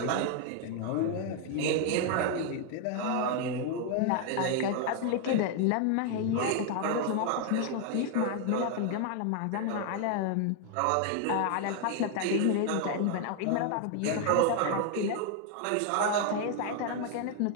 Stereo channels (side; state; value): both; different; correlation 0.00